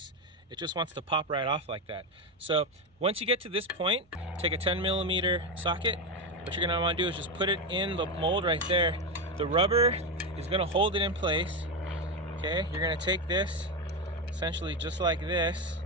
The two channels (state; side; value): normal; both; correlation 0.12